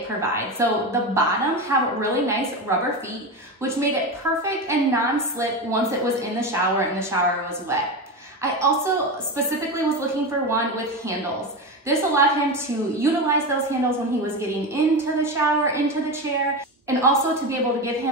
provides. So the bottom have really nice rubber feet, which made it perfect and non-slip once it was in the shower and the shower was wet. I also specifically was looking for one with handles. This allowed him to utilize those handles when he was getting into the shower, into the chair, and also to be able to give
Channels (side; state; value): both; normal; correlation 0.19